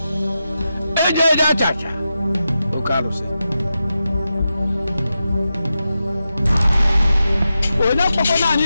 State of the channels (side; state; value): both; inverted; correlation -0.90